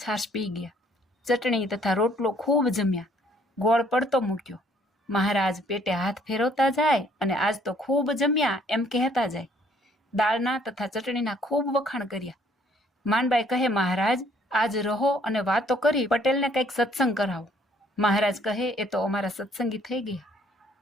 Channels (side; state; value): both; normal; correlation 0.63